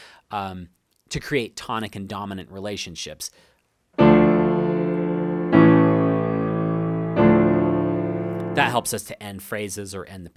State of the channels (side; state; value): both; identical; correlation 1.00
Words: to create tonic and dominant relationships. That helps us to end phrases or end the